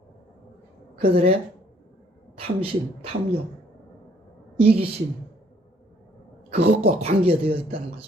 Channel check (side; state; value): both; normal; correlation 0.63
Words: 그들의 탐심, 탐욕, 이기심, 그것과 관계되어 있다는